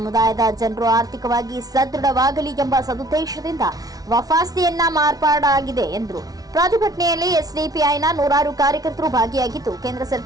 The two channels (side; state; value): left; late; 0.18 ms